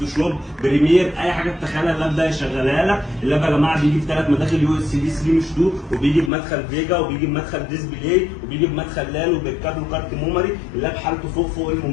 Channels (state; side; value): drops out; right; at 6.3 s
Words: بريمير، اي حاجة تتخيلها اللاب ده يشغلها لك. اللاب يا جماعه بيجي بثلاث مداخل يو اس بي 3 مش 2، وبيجي بمدخل فيجا، وبيجي بمدخل ديسبلاي، وبيجي بمدخل لال، وبالكابل كارت ميموري. اللاب حالته فوق